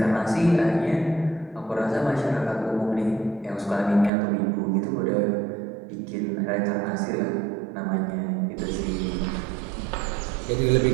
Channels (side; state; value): left; drops out; at 4.1 s